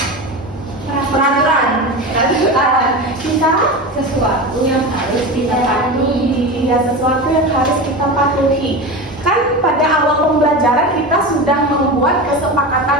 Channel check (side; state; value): both; normal; correlation 0.25